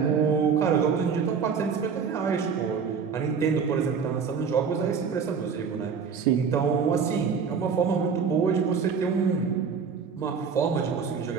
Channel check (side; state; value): left; quieter; 6.1 dB